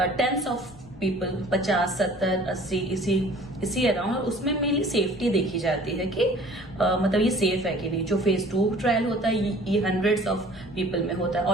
टेंस ऑफ पीपल, 50, 70, 80 इसी अराउंड, और उसमें मेनली सेफ्टी देखी जाती है कि मतलब ये सेफ है कि नहीं। जो फेज 2 ट्रायल होता है ये हंड्रेड्स ऑफ पीपल में होता है,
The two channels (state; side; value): noise; left; rumble, 25 dB below the sound